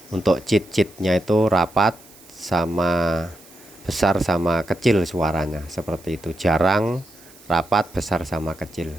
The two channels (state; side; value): noise; right; hiss, 24 dB below the sound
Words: Untuk cheat-cheatnya itu rapat sama besar sama kecil suaranya seperti itu, jarang rapat besar sama kecil.